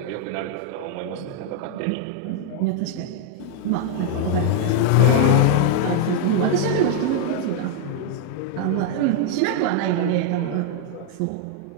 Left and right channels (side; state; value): both; different; correlation 0.00